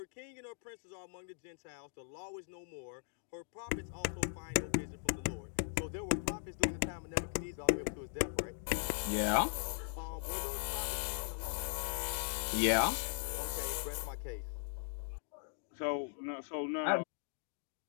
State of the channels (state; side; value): silent; right; digital silence